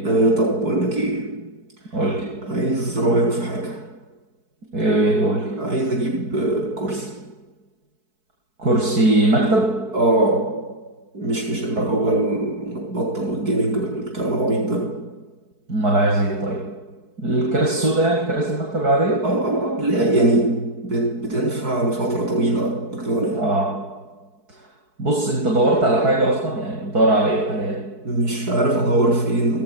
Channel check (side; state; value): left; late; 4.6 ms